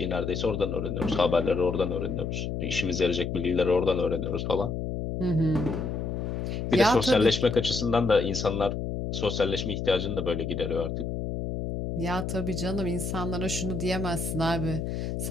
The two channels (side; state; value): left; noise; hum, 3 dB below the sound